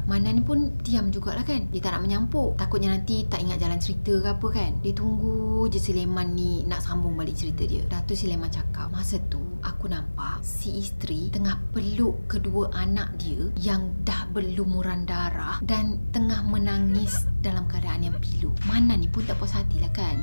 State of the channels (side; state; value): both; inverted; correlation -1.00